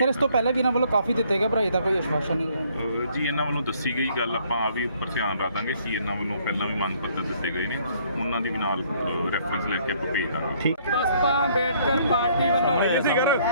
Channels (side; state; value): both; inverted; correlation -0.64